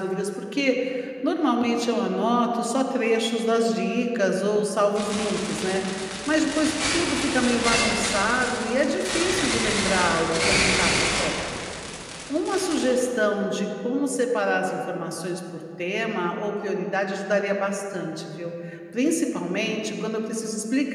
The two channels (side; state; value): both; identical; correlation 1.00